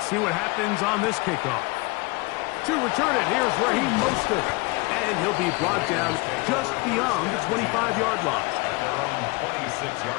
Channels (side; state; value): right; quieter; 25.3 dB